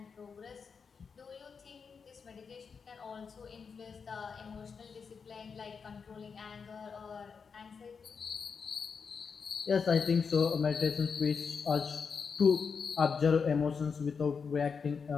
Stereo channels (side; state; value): right; quieter; 5.7 dB